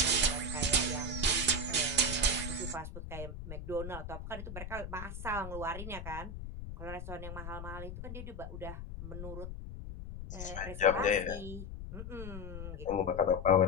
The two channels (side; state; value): left; noise; rumble, 8 dB below the sound